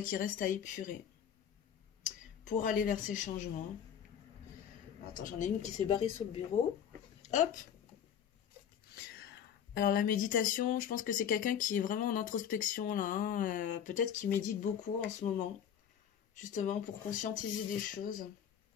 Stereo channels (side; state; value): right; quieter; 8.8 dB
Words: qui restent à épurer. Pour aller vers ces changements. Attends, j'en ai une qui s'est barrée sur le bureau. Hop! Alors la méditation, je pense que c'est quelqu'un qui est vraiment en introspection là. Hein. Peut-être qu'il médite beaucoup en ce moment. Justement pour conscientiser des choses.